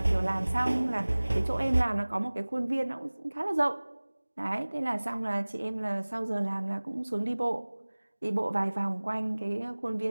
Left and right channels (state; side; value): inverted; both; correlation -1.00